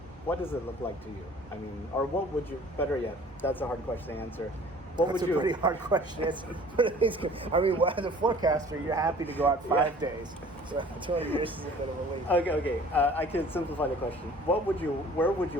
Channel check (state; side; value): normal; both; correlation 0.49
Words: what does it look like to you? I mean, or what would you, better yet, that's a hard question to answer. That's a pretty hard question. I mean, as a forecaster, you're happy to go out 5 days. So 200 years is a bit of a leap. Okay. I can simplify the question. Where would